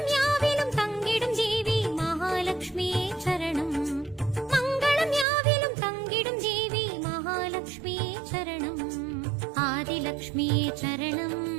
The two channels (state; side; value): drops out; left; at 5.2 s